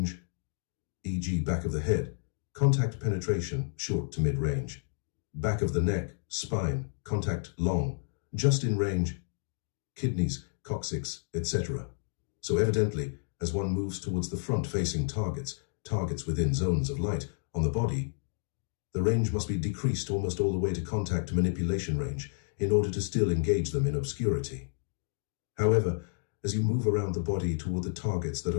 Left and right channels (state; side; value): silent; right; digital silence